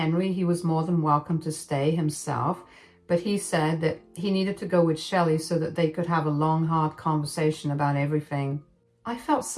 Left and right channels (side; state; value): both; identical; correlation 1.00